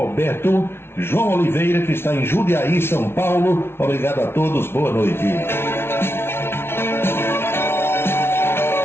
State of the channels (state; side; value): late; right; 0.12 ms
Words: João Oliveira, que está em Jundiaí, São Paulo. Obrigado a todos, boa noite.